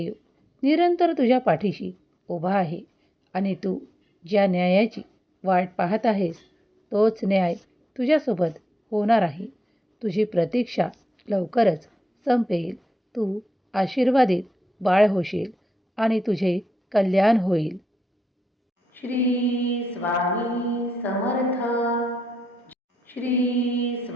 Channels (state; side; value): normal; both; correlation 0.86